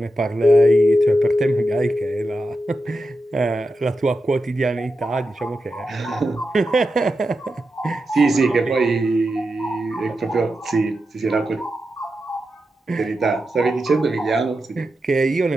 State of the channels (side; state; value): both; normal; correlation 0.89